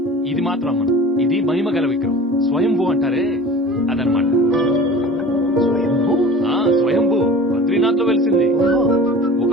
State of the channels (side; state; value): both; normal; correlation 0.41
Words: ఇది మాత్రం అమ్మను. ఇది మహిమ గల విగ్రహం, స్వయంభూ అంటారే అదనమాట. స్వయంభూ? స్వయంభూ బద్రీనాథ్ లో వెలిసింది.